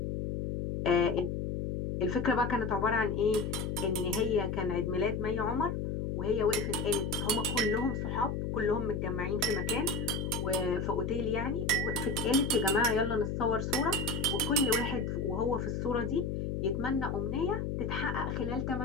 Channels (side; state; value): left; noise; hum, 2 dB below the sound